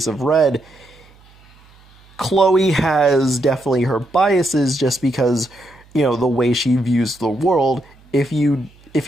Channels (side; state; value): right; noise; hum, 28 dB below the sound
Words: of Red, Chloe has definitely her biases just because, the way she views the world. If you